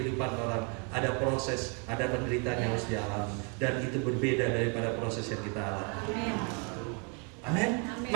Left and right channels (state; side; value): quieter; left; 36.3 dB